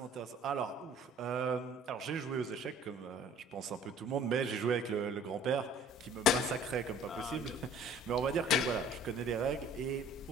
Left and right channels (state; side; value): normal; both; correlation 0.52